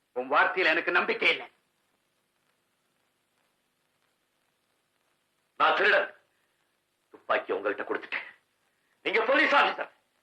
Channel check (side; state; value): both; identical; correlation 1.00